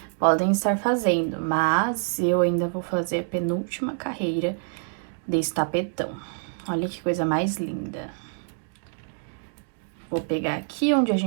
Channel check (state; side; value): silent; left; 61 dB below the other